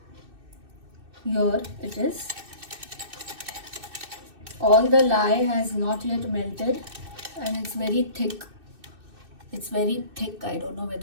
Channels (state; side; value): late; left; 2.6 ms